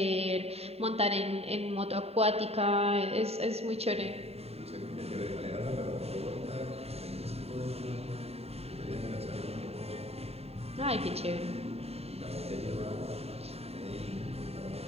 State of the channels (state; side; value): late; left; 0.30 ms